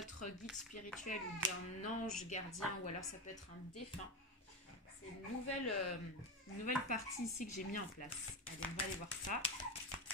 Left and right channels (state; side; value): normal; both; correlation 0.16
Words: guide spirituel ou d'un ange gardien, ou alors ça peut être un défunt. C'est une nouvelle partie ici que j'ai mis en place. Allez, on va aller voir ça.